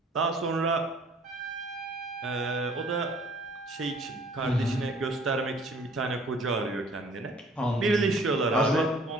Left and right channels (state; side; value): normal; both; correlation 0.55